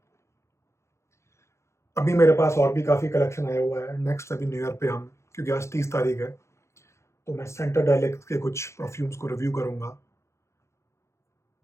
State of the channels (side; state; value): right; late; 0.14 ms